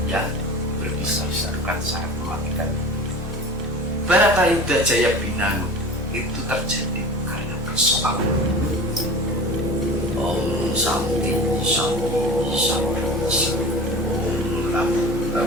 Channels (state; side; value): normal; both; correlation 0.37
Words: yang berbisa bukan sangat mematikan. Baratayuda Jaya Binangun itu terjadi karena persoalan. Om Santi Santi Santi Santi